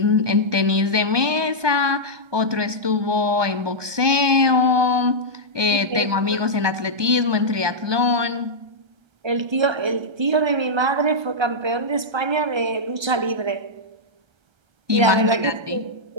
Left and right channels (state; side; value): late; left; 1.2 ms